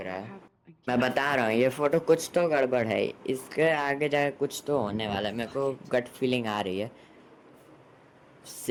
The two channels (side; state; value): both; identical; correlation 1.00